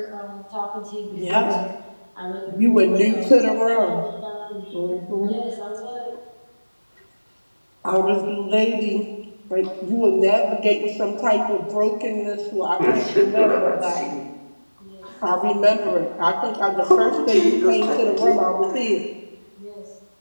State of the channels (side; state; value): both; inverted; correlation -1.00